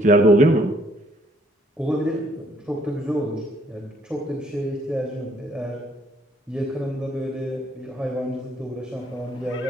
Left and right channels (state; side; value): normal; both; correlation 0.65